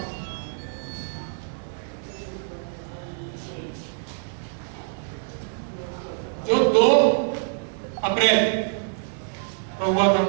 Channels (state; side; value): silent; left; digital silence